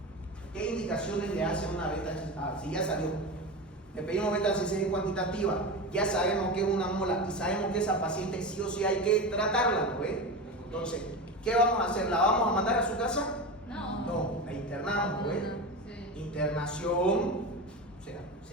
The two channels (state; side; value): normal; both; correlation 0.24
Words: ¿Qué indicaciones le hace una beta HCG? Si ya salió, le pedimos beta HCG cuantitativa, ya sabemos que es una mola y sabemos que esa paciente sí o sí hay que tratarla, ¿no ve? Entonces, ¿qué vamos a hacer? ¿La vamos a mandar a su casa? No, la internamos, ¿no ve? Sí. Internación, o sea, se